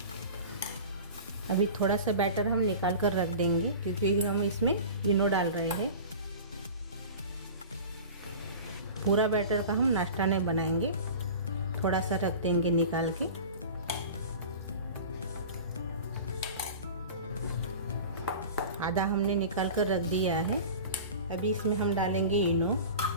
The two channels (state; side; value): inverted; both; correlation -0.36